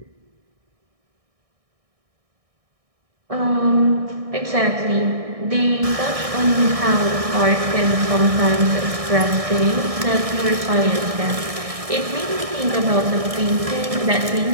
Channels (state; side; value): late; left; 1.6 ms